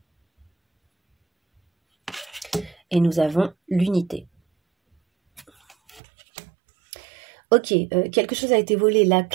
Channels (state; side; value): drops out; left; at 6.0 s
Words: Et nous avons l'unité. Ok, quelque chose a été volé. La